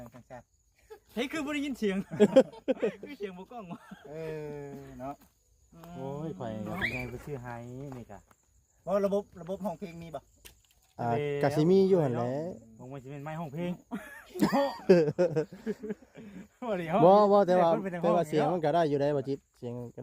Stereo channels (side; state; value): both; identical; correlation 1.00